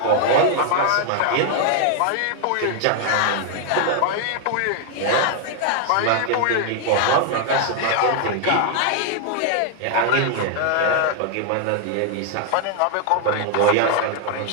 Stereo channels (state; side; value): different; both; correlation 0.00